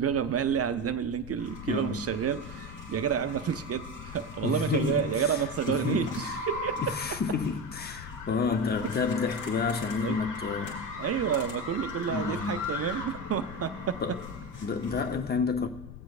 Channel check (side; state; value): left; noise; rumble, 14 dB below the sound